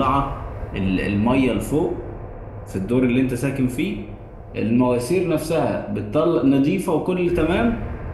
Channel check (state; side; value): identical; both; correlation 1.00